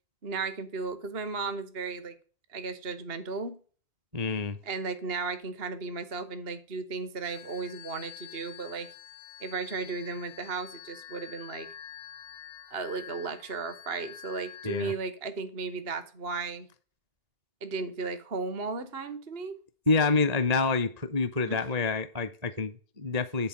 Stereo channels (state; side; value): late; left; 2.8 ms